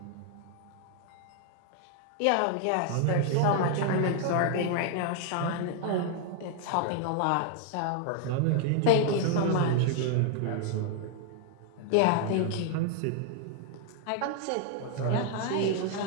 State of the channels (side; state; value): both; different; correlation 0.00